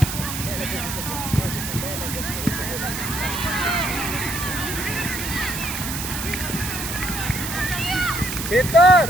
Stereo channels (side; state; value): right; noise; hiss, 5 dB below the sound